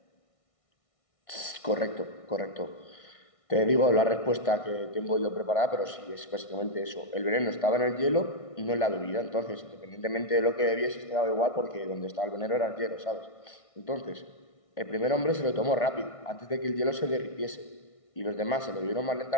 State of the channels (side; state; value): right; late; 1.6 ms